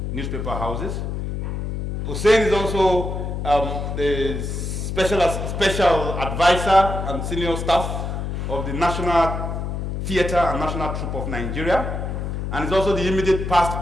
newspaper houses. Hussein is also the special advisor and senior staff of the National Theatre and National Troupe of Nigeria, and is also the immediate past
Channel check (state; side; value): noise; left; hum, 4 dB below the sound